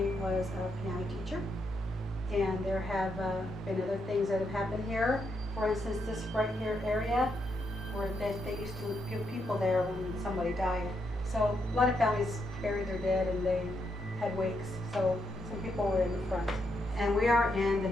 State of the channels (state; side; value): normal; both; correlation 0.80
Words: was a piano teacher. And there have been other things that have happened here. For instance, this right here area, where they used to give people there when somebody died. So a lot of families buried their dead and they had wakes. So some people were in the front. And we are in the